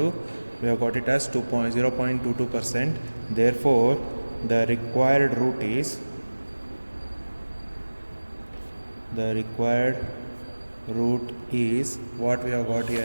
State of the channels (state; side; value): inverted; both; correlation -1.00